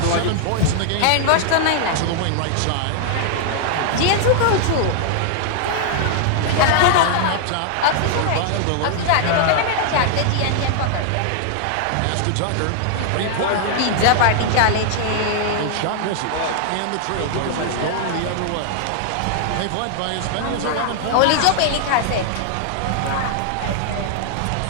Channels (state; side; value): different; both; correlation -0.01